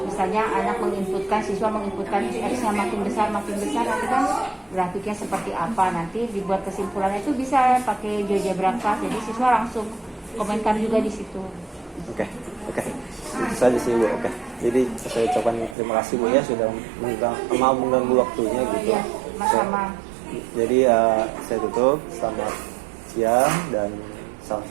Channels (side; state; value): left; drops out; at 15.8 s